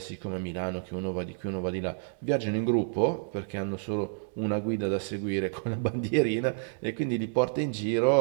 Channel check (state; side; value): silent; left; digital silence